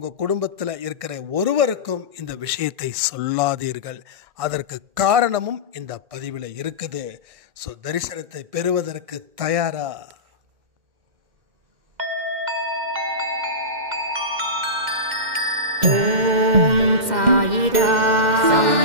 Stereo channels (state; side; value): late; left; 2.1 ms